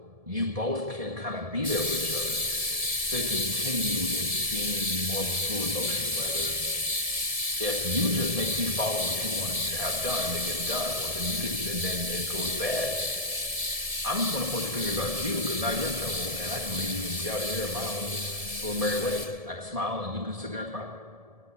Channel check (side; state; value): left; late; 1.7 ms